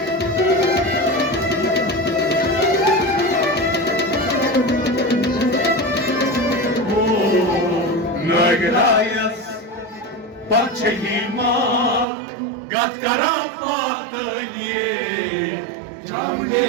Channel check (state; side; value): drops out; left; at 12.1 s